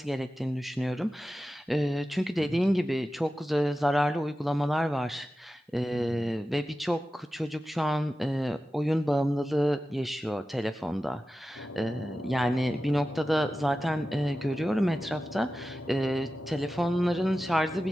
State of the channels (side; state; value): both; normal; correlation 0.93